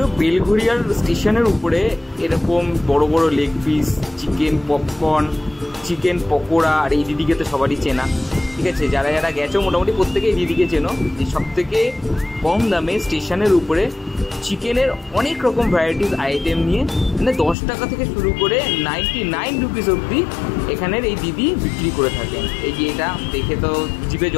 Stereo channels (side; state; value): right; drops out; at 17.6 s